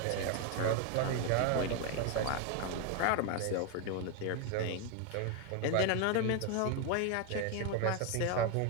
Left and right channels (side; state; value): both; different; correlation 0.01